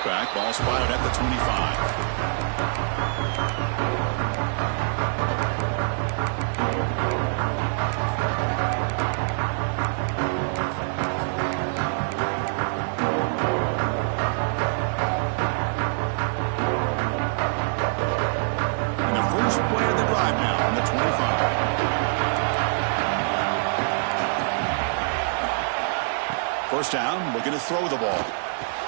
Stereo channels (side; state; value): left; silent; 62 dB below the other